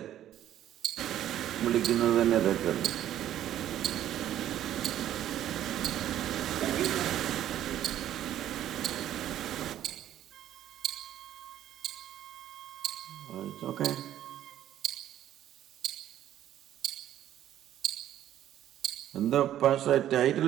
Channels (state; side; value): quieter; left; 11.8 dB